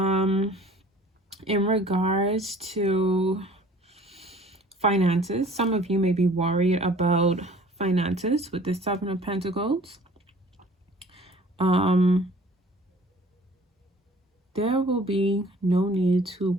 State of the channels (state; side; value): normal; both; correlation 0.50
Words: In regards to finances, some of you may be worried about finances with the 7 of Pentacles. There will be no need to